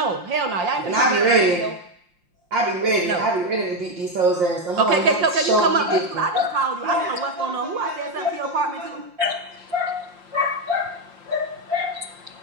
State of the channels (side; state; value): left; late; 5.7 ms